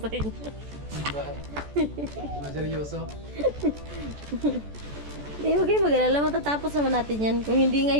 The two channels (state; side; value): late; left; 14 ms